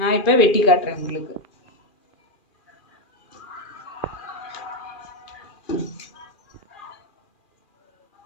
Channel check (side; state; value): right; late; 2.4 ms